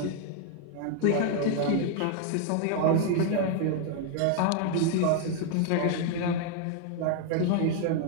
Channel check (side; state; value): both; different; correlation 0.00